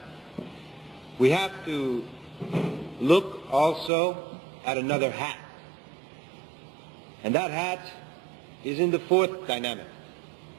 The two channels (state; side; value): drops out; left; at 3.9 s